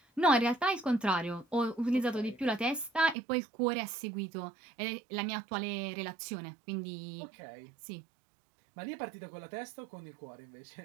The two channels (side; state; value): left; drops out; at 3.2 s